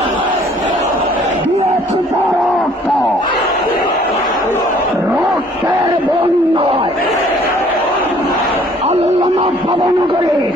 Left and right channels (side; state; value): both; normal; correlation 0.57